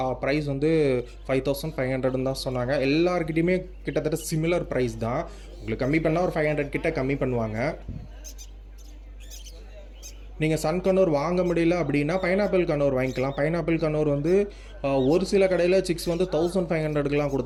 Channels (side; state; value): both; identical; correlation 1.00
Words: ப்ரைஸ் வந்து 5500 தான் சொன்னாங்க. எல்லாருக்கிட்டையுமே கிட்டத்தட்ட சிமிலர் ப்ரைஸ் தான். உங்களுக்கு கம்மி பண்ணால் ஒரு 500 கிட்ட கம்மி பண்ணுவாங்க. நீங்கள் சன்கனூர் வாங்க முடியல அப்படின்னா பைனாப்பிள் கனூர் வாங்கிக்கலாம். பைனாப்பிள் கனூர் வந்து ஒரு சில கடையில் சிக்ஸ் வந்து 1500க்குலாம்